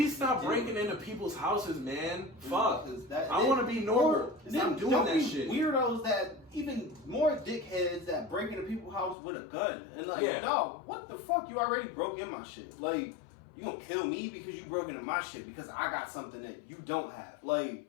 stop you breaking do. into people's houses, man. Fuck. 'Cause I want to be normal. Stop doing don't that be shit. Weirdos that even more dickheads that break into people's house with a gun and like, Yeah. no, what the fuck? You already broke in my shit. Like, you gonna kill me because you broke into my shit because I got something that you don't have.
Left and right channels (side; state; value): right; drops out; at 9.2 s